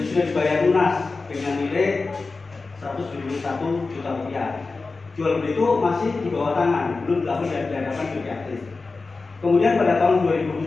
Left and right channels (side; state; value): right; quieter; 3.9 dB